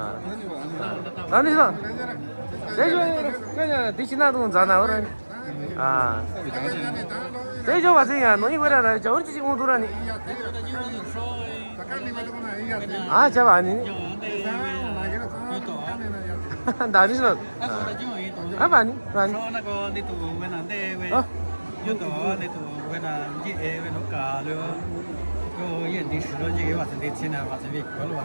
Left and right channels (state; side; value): inverted; both; correlation -1.00